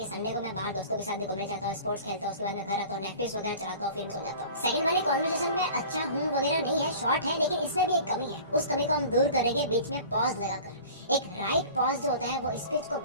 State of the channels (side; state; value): both; inverted; correlation -0.42